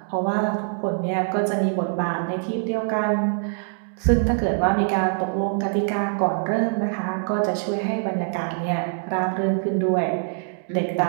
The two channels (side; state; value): left; silent; digital silence